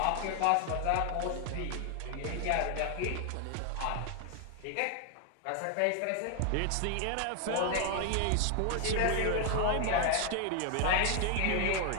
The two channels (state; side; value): different; both; correlation 0.01